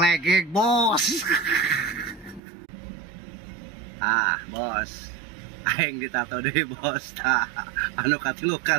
legeg bos. Bos, aing ditato deh bos. Tah anu katilu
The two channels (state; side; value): drops out; left; at 2.4 s